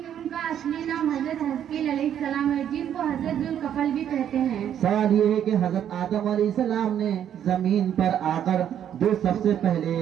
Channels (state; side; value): quieter; left; 9.8 dB